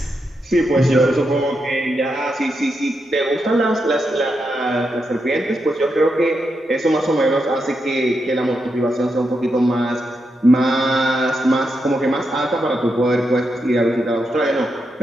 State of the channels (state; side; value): normal; both; correlation 0.84